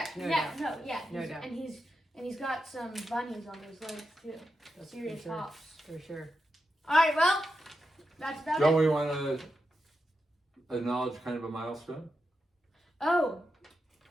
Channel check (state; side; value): normal; both; correlation 0.88